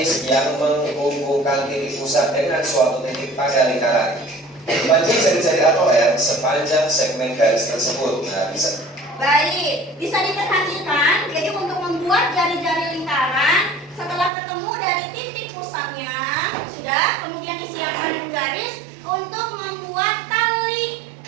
yang menghubungkan titik pusat dengan suatu titik pada lingkaran. Panjang jari-jari atau R sepanjang segmen garis tersebut. Nah, bisa. Baik, bisa diperhatikan. Jadi untuk membuat jari-jari lingkaran, setelah ketemu dari titik pusatnya, sudah, kemudian disiapkan garis untuk membuat tali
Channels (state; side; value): drops out; left; at 14.3 s